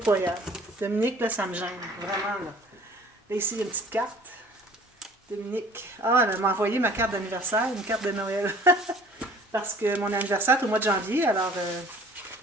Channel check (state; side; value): normal; both; correlation 0.50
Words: Dominique, là, ça me gêne. Vraiment, là. Là, ici, il y a une petite carte. Dominique. Ah, elle m'a envoyé ma carte d'anniversaire, une carte de Noël. Parce que mon anniversaire est au mois de janvier, alors